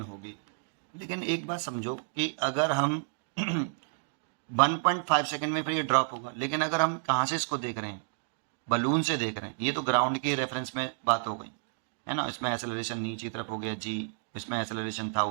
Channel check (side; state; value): left; silent; digital silence